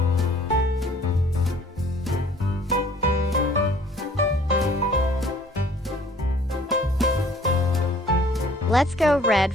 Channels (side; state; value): both; normal; correlation 0.55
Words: Let's go red